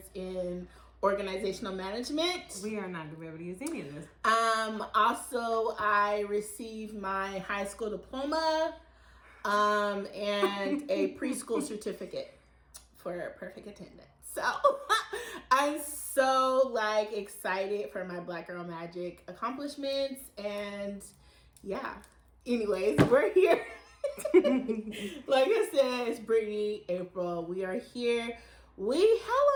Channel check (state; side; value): identical; both; correlation 1.00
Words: in organizational management. We are not going to be able to use any of this. Also, I received my high school diploma and a preschool certificate for perfect attendance. So I'm so excited for my Black Girl Magic accomplishments, and yeah. Anyways, we're here. Like I said, it's Brittany, April. We are here. How